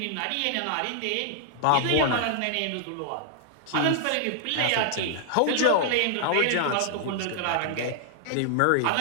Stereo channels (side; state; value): both; different; correlation 0.00